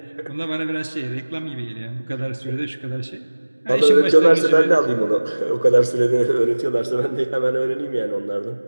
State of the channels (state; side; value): inverted; both; correlation -1.00